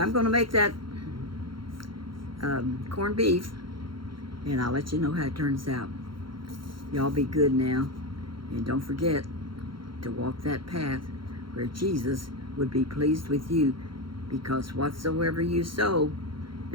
going to make that corned beef, and I'll let you know how it turns out. Y'all be good now. And don't forget to walk that path where Jesus would be pleased with you, because whatsoever you sow,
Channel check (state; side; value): late; left; 0.73 ms